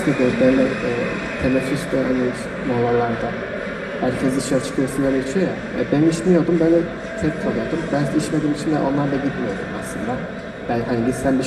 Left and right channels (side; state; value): both; identical; correlation 1.00